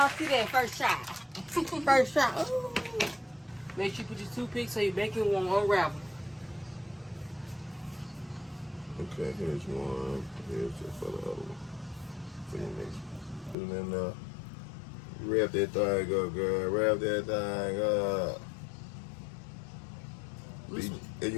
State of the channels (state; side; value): drops out; right; at 13.6 s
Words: see that first shot. First shot. Ooh. Make sure you put your toothpick so your bacon won't unravel. Okay, here's one. Here's just for the other one. For your next one. Put it in there. Wrap that thing up, girl. Wrap that thing up. And